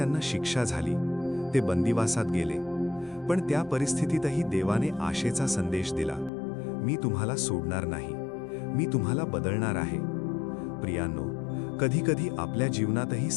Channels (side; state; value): right; drops out; at 6.3 s